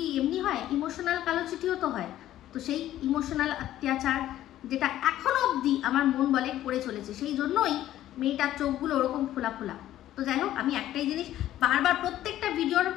এমনি হয়, ইমোশনাল কালো চিঠিও তো হয়। তো সেই ইমোশনাল অত্যাচার যেটা এখনো অবধি আমার মন বলে করে চলেছে, সেই জন্যই মেয়েটার চোখগুলো ওরকম ফোলা। তো যাই হোক, আমি একটাই জিনিস বারবার প্রত্যেকটা ভিডিওর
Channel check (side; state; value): right; quieter; 13.2 dB